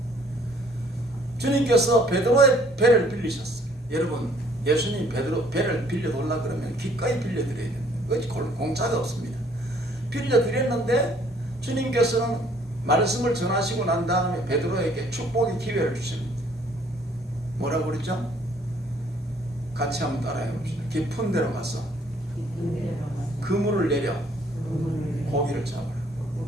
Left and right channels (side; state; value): both; normal; correlation 0.60